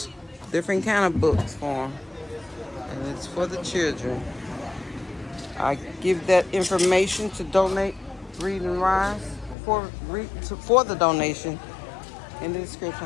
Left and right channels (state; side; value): drops out; right; at 9.6 s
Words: different kind of books for them. And it's for the children. I give that information to donate Read and Rise for the donation in the description.